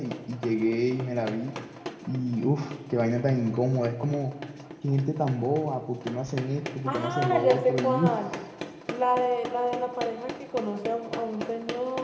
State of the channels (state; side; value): identical; both; correlation 1.00